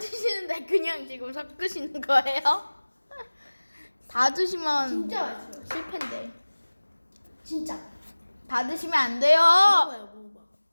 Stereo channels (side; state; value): both; inverted; correlation -1.00